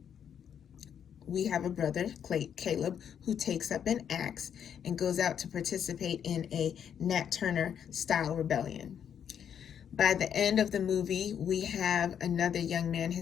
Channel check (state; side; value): quieter; right; 8.5 dB